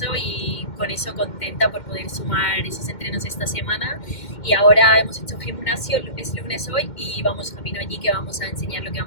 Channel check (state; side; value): late; right; 2.1 ms